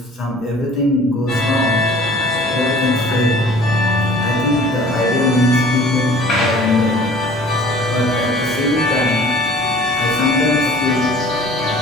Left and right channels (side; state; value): both; normal; correlation 0.49